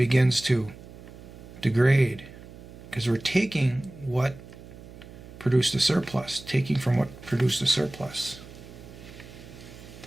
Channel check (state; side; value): noise; right; hum, 17 dB below the sound